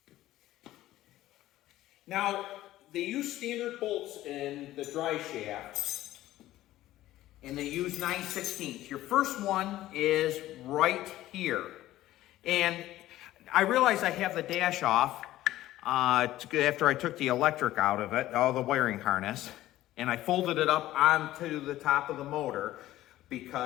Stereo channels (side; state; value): right; quieter; 14.9 dB